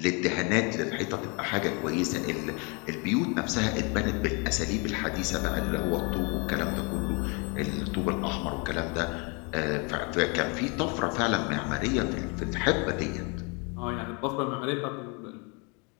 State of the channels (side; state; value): right; quieter; 32.2 dB